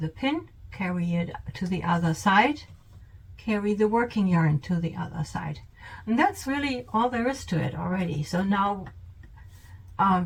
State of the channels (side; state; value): both; identical; correlation 1.00